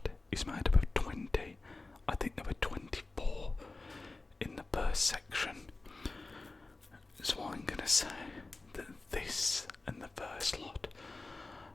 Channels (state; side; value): quieter; right; 3.3 dB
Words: is made up of 20. I think there were 24 in the first section. So I'm gonna say that this and the first lot